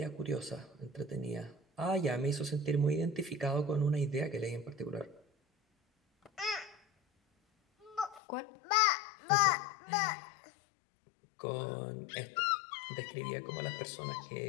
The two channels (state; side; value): drops out; right; at 8.2 s